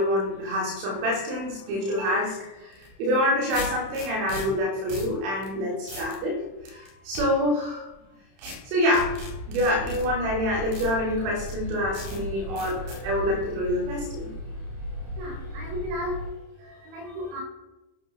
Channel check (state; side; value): late; left; 31 ms